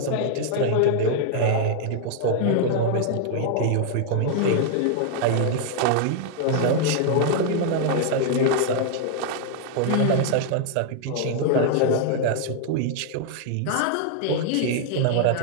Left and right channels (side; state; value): both; different; correlation 0.00